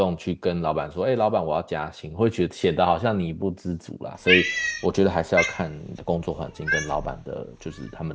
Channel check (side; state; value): both; identical; correlation 1.00